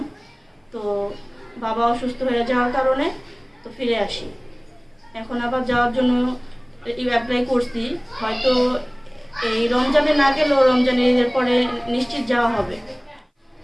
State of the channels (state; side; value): identical; both; correlation 1.00